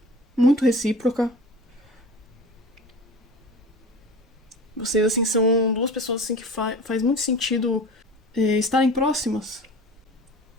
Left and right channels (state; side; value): normal; both; correlation 0.36